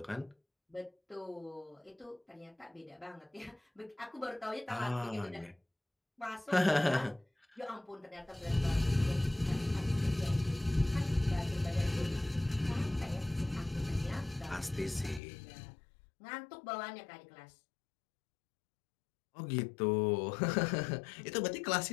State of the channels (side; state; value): right; drops out; at 15.2 s